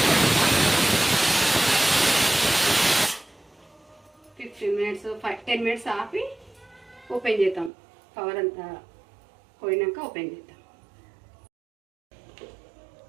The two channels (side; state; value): left; drops out; at 7.7 s